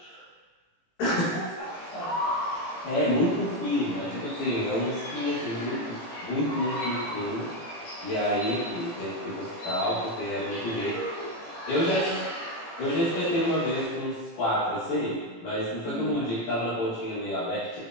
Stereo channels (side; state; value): right; late; 18 ms